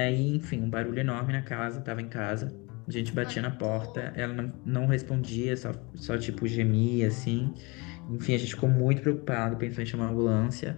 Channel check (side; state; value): right; quieter; 27.4 dB